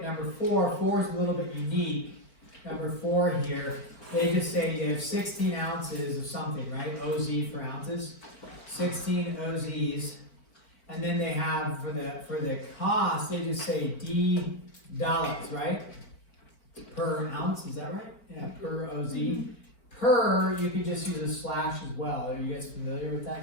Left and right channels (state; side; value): late; right; 4.4 ms